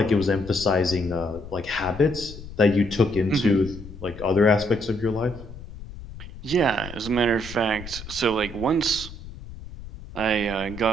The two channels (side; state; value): left; noise; rumble, 13 dB below the sound